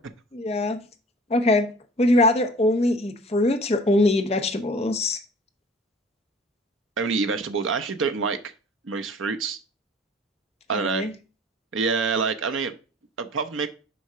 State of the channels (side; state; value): both; normal; correlation 0.46